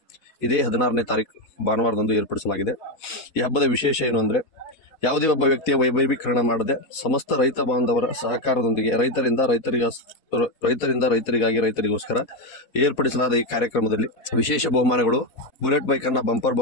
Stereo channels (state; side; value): late; right; 4.1 ms